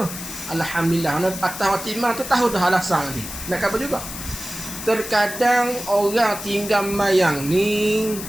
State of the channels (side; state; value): left; noise; hiss, 9 dB below the sound